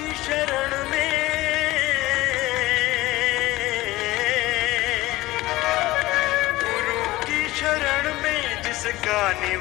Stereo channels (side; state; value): right; quieter; 18.5 dB